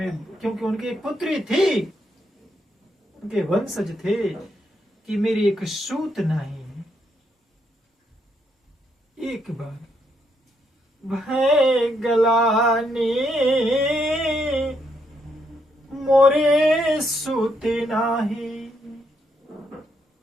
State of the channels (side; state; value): both; normal; correlation 0.76